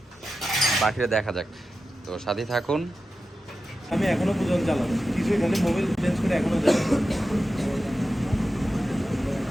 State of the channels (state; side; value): normal; both; correlation 0.92